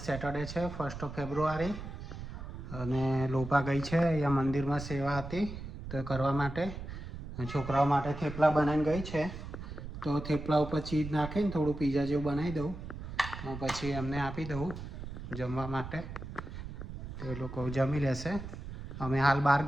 સેટરડે છે, 1 ફેબ્રુઆરી, અને લોપા ગઈ છે અહીંયા મંદિરમાં સેવા હતી તો કરવા માટે. છોકરાઓ માટે થેપલા બનાવીને ગઈ છે. તો થેપલા ઉપર ચીઝ નાખીને થોડું પીઝા જેવું બનાવી દઉં, પછી એમને આપી દઉં જમવા માટે, તો એ લોકો જમી લેશે. અમે હાલ બહાર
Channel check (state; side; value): noise; right; rumble, 9 dB below the sound